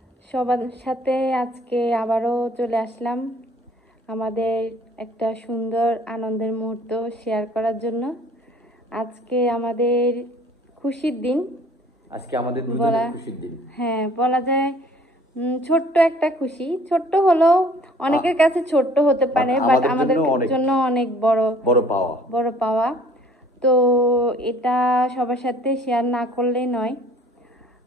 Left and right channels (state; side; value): normal; both; correlation 0.55